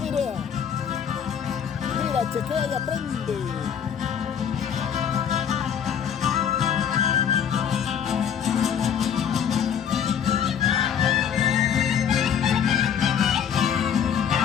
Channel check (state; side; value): quieter; right; 8.2 dB